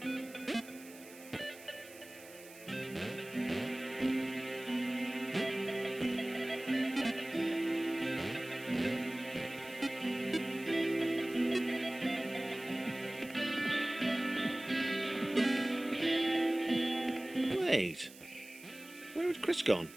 Wait, where had Chris gone?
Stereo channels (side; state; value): right; noise; hiss, 19 dB below the sound